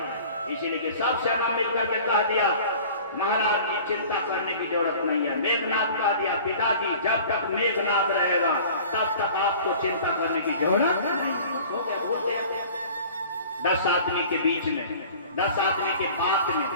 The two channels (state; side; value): inverted; both; correlation -0.45